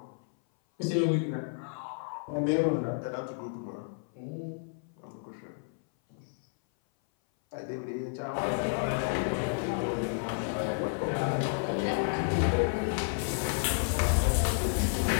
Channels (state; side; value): silent; right; 57 dB below the other